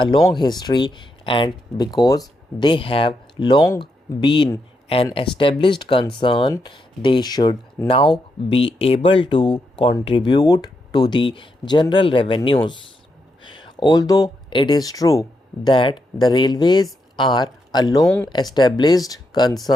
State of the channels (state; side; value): normal; both; correlation 0.82